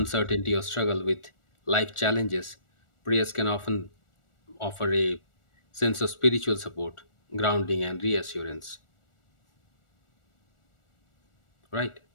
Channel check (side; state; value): right; late; 1.4 ms